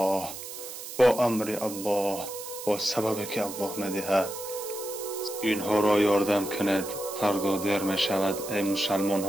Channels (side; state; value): right; noise; hiss, 10 dB below the sound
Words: با امر الله، با سببی که الله می‌دهد. اینها را یاردم کنید، فردا دیر می شود. ای مسلمان